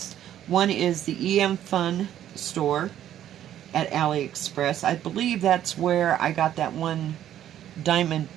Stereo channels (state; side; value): quieter; left; 11.4 dB